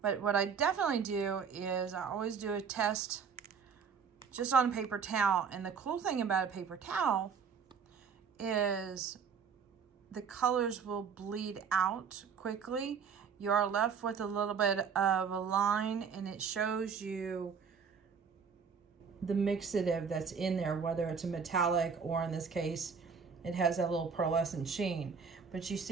But what I definitely do is I always do a test just on a paper towel. And the cool thing about a paper towel is the colors will bleed out quickly. You are left with a little bit of a line and it shows you the mixative that's in there, whether it's a metallic or in this case, it has that little pearlescent sheen. But you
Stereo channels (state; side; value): quieter; left; 6.3 dB